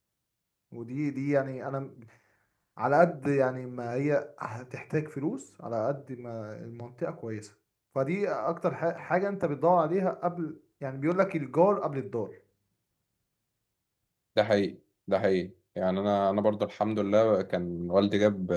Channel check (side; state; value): both; identical; correlation 1.00